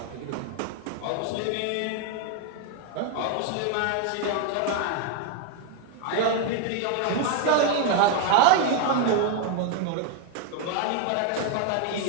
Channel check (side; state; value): both; different; correlation 0.01